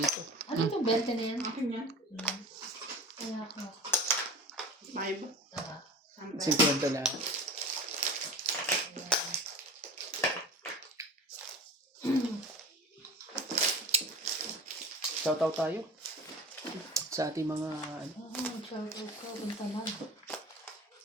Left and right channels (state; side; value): normal; both; correlation 0.36